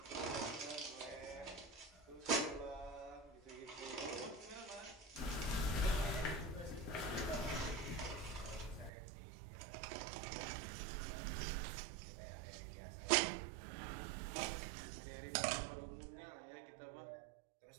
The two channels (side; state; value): left; drops out; at 8.9 s